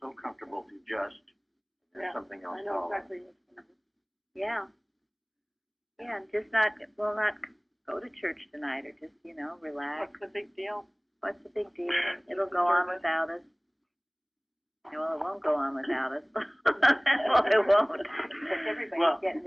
so comfortable to just something else I know exactly what's going on. Yeah. Yeah, and just not go to church tonight, or just, relax. What's the big deal? What's the big deal? It'll go on without us. Well, it won't go on without us. Well, it won't. Because everybody's getting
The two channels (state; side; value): identical; both; correlation 1.00